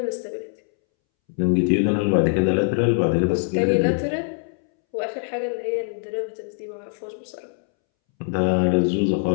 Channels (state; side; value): silent; right; 64 dB below the other